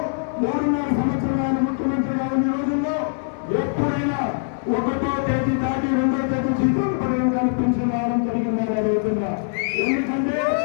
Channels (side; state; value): right; silent; digital silence